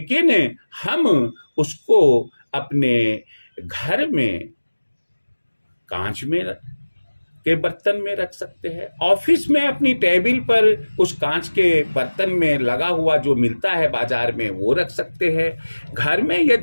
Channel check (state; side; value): inverted; both; correlation -1.00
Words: हम उसको अपने घर में कांच में के बर्तन में रख सकते हैं। ऑफिस में अपनी टेबल पर उस कांच के बर्तन में लगा हुआ जो मिलता है बाजार में, वो रख सकते हैं। घर में